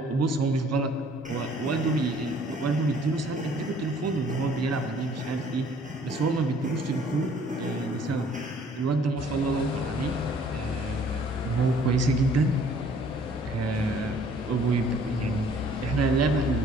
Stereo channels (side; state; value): both; normal; correlation 0.57